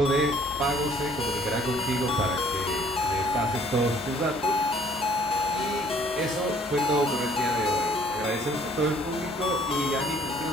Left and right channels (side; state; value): both; normal; correlation 0.59